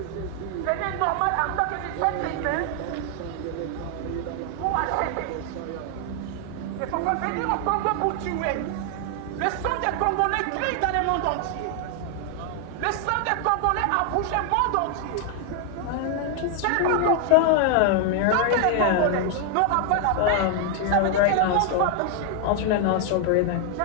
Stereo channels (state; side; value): different; both; correlation 0.00